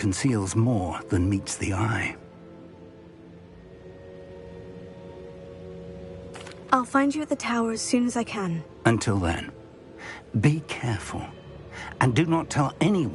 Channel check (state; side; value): identical; both; correlation 1.00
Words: more than meets the eye. I'll find you at the tower as soon as I can. Until then, be careful, and do not tell